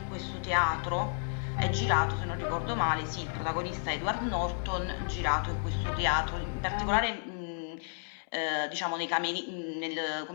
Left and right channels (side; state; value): right; silent; 56 dB below the other